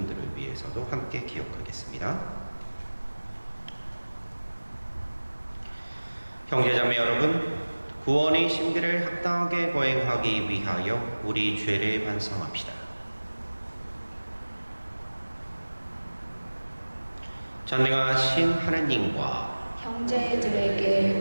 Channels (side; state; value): both; inverted; correlation -1.00